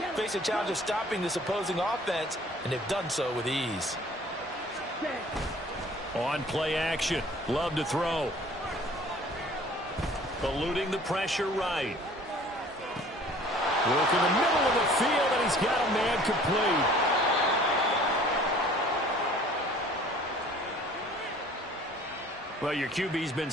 Face a challenge of stopping this opposing offense, and they've done so with ease. On play action. Love to throw. Eluding the pressure right. Work in the middle of the field, and he's got a man complete. Well, your QB's been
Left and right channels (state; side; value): normal; both; correlation 0.51